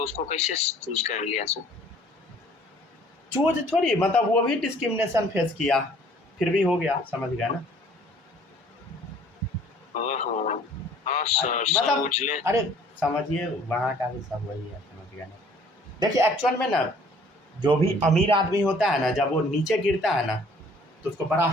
कैसे चूज कर लिया सर? चूज थोड़ी, मतलब वो भी डिस्क्रिमिनेशन फेस किया, फिर भी हो गया, समझ गया ना। हाँ सर, मतलब अरे समझिए वहाँ का भी सब वही है, समझ गया ना। देखिए एक्चुअल में ना जो भी अमीर आदमी होता है ना, जब वो नीचे गिरता है ना तो उसको बड़ा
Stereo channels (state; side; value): normal; both; correlation 0.55